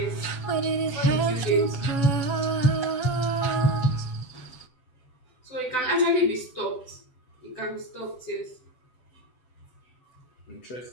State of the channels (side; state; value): right; late; 7.9 ms